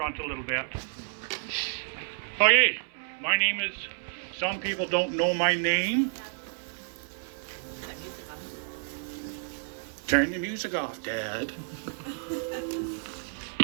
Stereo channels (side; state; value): left; silent; 58 dB below the other